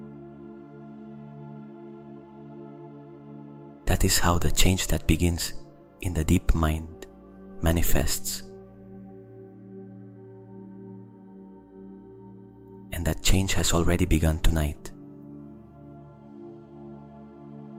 That is how the change that begins in the deep mind manifests. And that change has already begun tonight.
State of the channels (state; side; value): identical; both; correlation 1.00